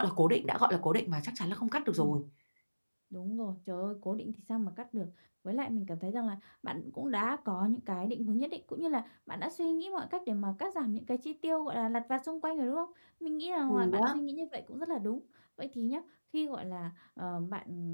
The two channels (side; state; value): both; inverted; correlation -1.00